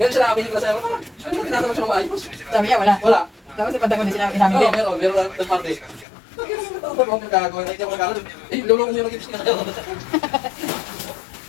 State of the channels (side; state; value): right; drops out; at 6.1 s